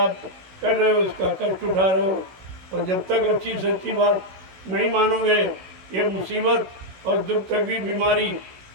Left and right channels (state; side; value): late; left; 16 ms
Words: कर रहे हो, उसका कष्ट उठा रहे हो। और जब तक अच्छी सच्ची बात नहीं मानोगे, ये मुसीबत और दुख, तकलीफ, बीमारी